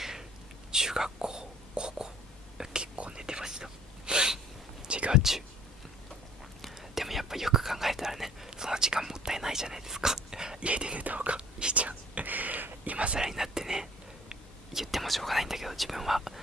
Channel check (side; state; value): both; normal; correlation 0.51